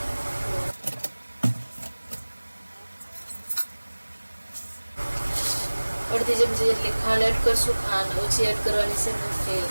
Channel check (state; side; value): inverted; both; correlation -1.00